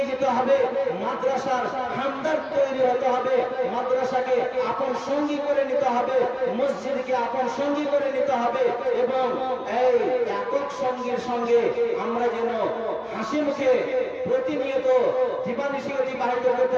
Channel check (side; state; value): both; identical; correlation 1.00